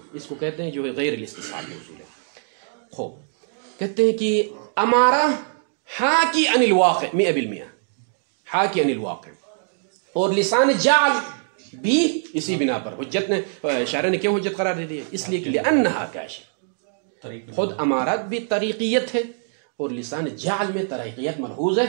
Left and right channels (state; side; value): silent; left; digital silence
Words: اس کو کہتے ہیں جو غیر الاستصحابی اصول ہے. خوب کہتے ہیں کہ امارہ حاکی عن الواقع 100%، حاکی عن الواقع، اور لسان جعل بھی اسی بنا پر حجت نے، شارع نے کیوں حجت قرار دے دی؟ اس لیے کہ لأنہا کاشف. خود امارات بھی طریقیت ہے اور لسان جعل میں طریقیت ملحوظ